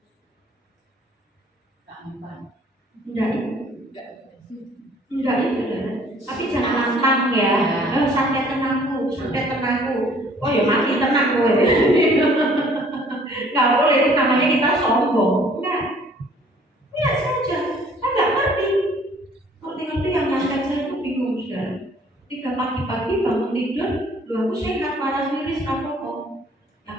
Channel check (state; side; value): normal; both; correlation 0.57